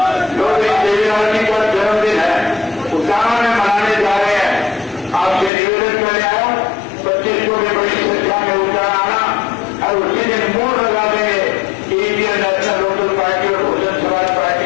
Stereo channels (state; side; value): drops out; right; at 5.5 s